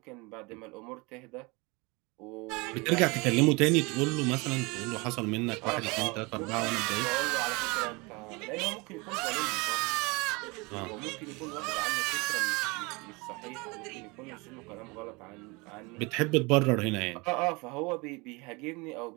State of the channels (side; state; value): left; quieter; 26.6 dB